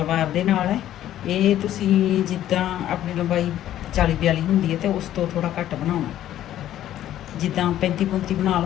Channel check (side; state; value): right; quieter; 12.3 dB